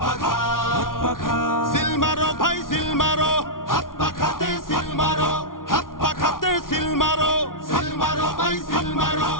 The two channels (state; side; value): late; right; 0.90 ms